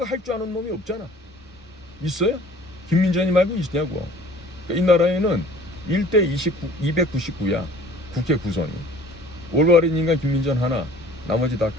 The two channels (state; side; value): normal; both; correlation 0.50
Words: 할 줄 아는 놈이 없잖아. 있어요? 김민전이 말고 있냐고. 그러니까 이 나라에는 1대 299야. 국회 구성이. 올바른 인간 김민전 하나, 나머지 다